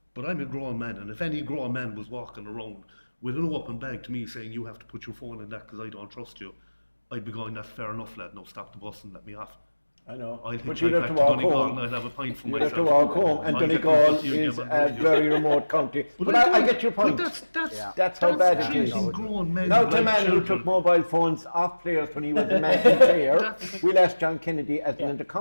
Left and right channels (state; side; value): inverted; both; correlation -1.00